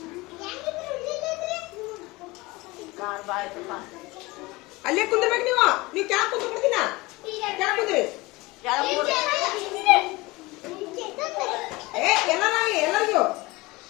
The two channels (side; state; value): right; quieter; 21.9 dB